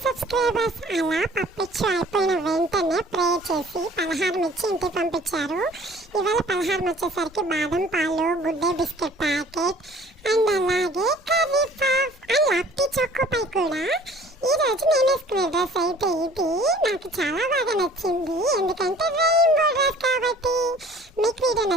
Subscribers అలా పప్పిచ్చు అయిపోయిన వెంటనే ప్రే చేసి పలహారం ఇచ్చి ఇంటికి పంపించారు. ఇవాళ పలహారం వచ్చేసరికి బాదం పాలు, good day biscuit packet and అలాగే కర్రీ పఫ్ అండ్ లప్టీ చోకో పై కూడా. ఈరోజు నేను వేసుకునే డ్రెస్ అయితే ఇది నాకు చాలా బాగా నచ్చింది, ఎందుకంటే రెయిన్బో డ్రెస్ కాబట్టి. మీకు వీడియో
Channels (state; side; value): normal; both; correlation 0.51